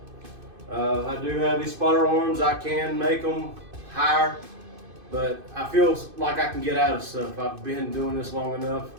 I do have these spotter arms. I can make them higher, but I feel like I can get out of stuff. I've been doing this long enough.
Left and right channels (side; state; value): left; late; 2.5 ms